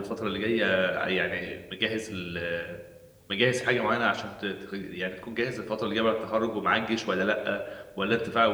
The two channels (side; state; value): both; identical; correlation 1.00